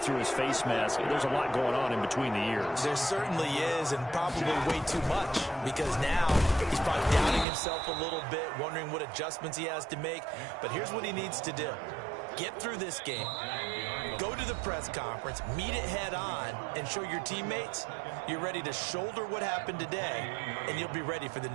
his face mask. There's a lot going on in between the ears. There certainly is, and probably way too much, because now he's probably doubting himself a little bit, wondering what adjustments he has to make. But here's what he needs to do. Get through this game, go to the press conference, meet it head on, and show your teammates you're ready to shoulder what happened today, and you'll be ready for the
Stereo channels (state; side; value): drops out; left; at 7.5 s